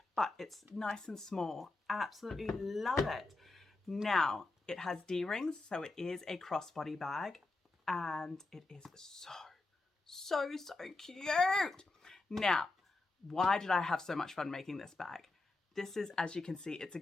but it's nice and small. Absolutely love it. Now, it has D-rings, so it is a crossbody bag, and it is so cute. Now, why did I have so much fun making this bag? This is, as you can see, it's a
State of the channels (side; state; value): right; quieter; 3.3 dB